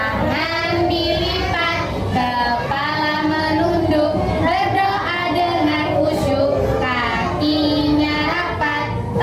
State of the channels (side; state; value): both; identical; correlation 1.00